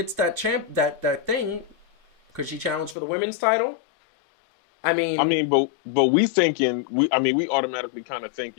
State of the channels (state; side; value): drops out; right; at 3.0 s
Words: that that thing, could she challenge for the women's title? I mean, but we automatically kind of